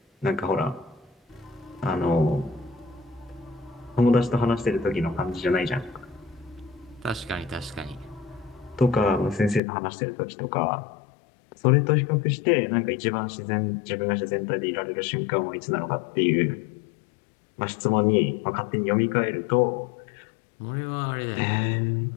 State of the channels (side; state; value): right; drops out; at 9.6 s